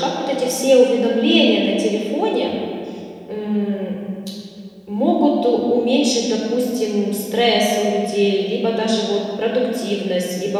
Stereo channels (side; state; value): both; identical; correlation 1.00